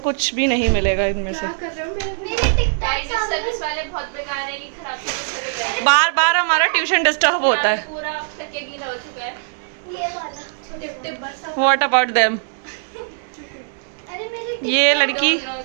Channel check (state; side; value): silent; left; digital silence